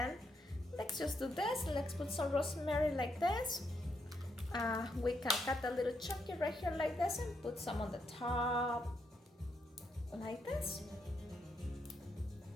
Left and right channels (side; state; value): both; normal; correlation 0.79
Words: let's just do this. Let's put some rosemary like this. We can cut a little chunky right here like this and put some on the top like this.